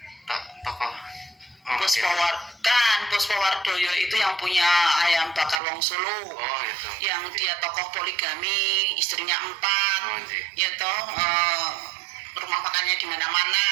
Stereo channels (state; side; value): drops out; left; at 5.6 s